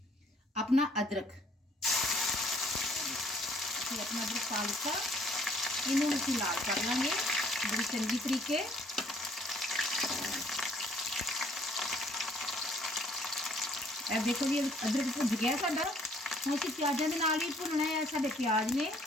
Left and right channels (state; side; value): normal; both; correlation 0.61